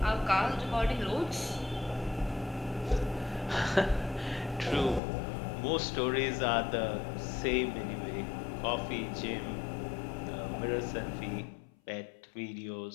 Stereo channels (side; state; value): right; drops out; at 5.0 s